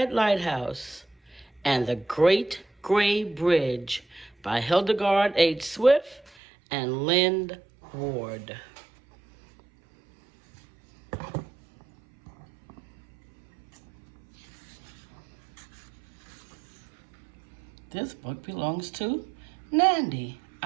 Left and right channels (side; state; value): left; drops out; at 6.3 s